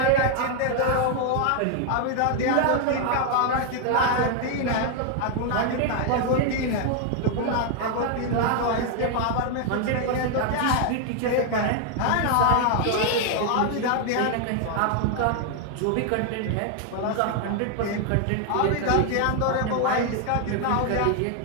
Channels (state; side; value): different; both; correlation 0.00